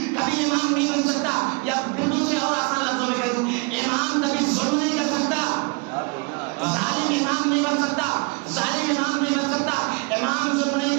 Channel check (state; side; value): quieter; left; 30.9 dB